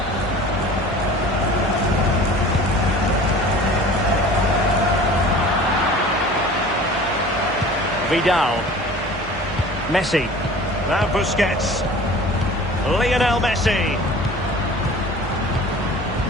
Vidal. Messi. Now Busquets. Lionel Messi.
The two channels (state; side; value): normal; both; correlation 0.43